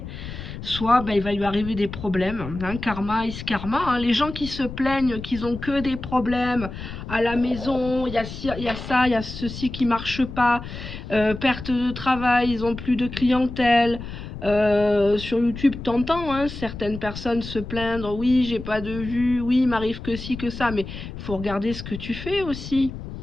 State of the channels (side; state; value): left; noise; rumble, 10 dB below the sound